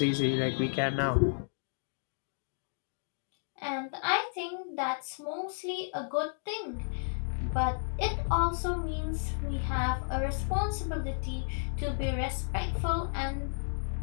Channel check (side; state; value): right; silent; digital silence